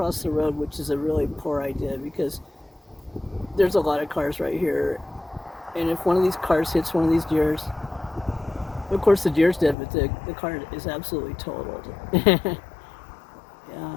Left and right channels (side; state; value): right; drops out; at 9.8 s